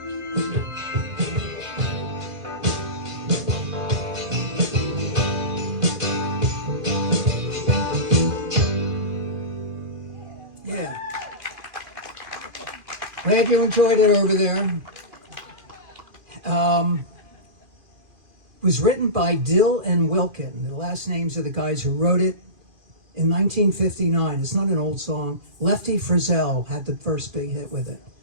Yeah. Glad you enjoyed it over there. Was written by Dill and Wilkin. The last names of the guys who wrote it in 1959. It's not an old song. Lefty Frizzell had the first big hit with it.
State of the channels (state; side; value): late; left; 2.4 ms